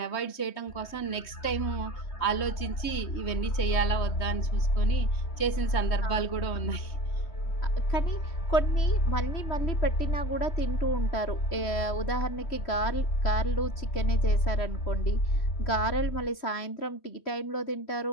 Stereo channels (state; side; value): late; right; 3.2 ms